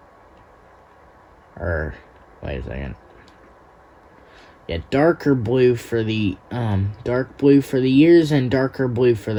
wait a second. Yeah, darker blue for the dark blue for the ears and darker blue for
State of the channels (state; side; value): identical; both; correlation 1.00